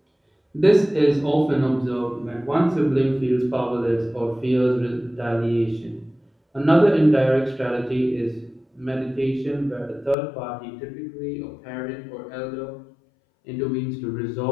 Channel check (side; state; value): right; drops out; at 10.2 s